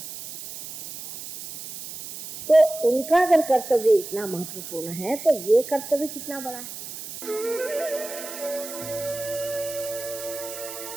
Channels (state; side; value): noise; right; hiss, 11 dB below the sound